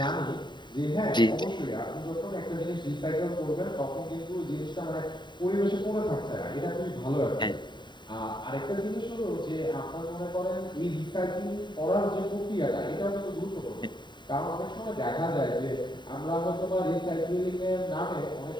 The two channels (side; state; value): right; late; 0.22 ms